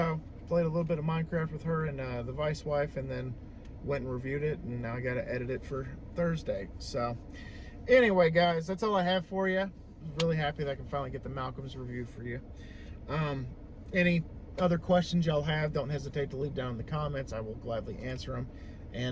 played a little bit of Minecraft with her and the vice wife, and then went and reviewed it, and now I got to edit it for Thursday. So anyway, guys, that's all I have for you. Really happy that I can finally get the Malcolm's review for you. Any other questions y'all have, don't hesitate to leave down in the comments. I will gladly answer them.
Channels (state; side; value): identical; both; correlation 1.00